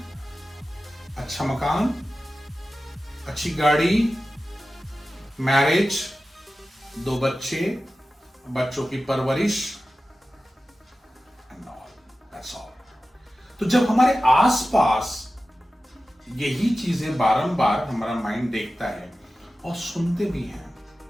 अच्छा मकान, अच्छी गाड़ी, मैरिज, 2 बच्चे, बच्चों की परवरिश, and all, that's all. तो जब हमारे आसपास यही चीजें बारंबार हमारा माइंड देखता है और सुनते भी हैं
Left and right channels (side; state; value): both; normal; correlation 0.95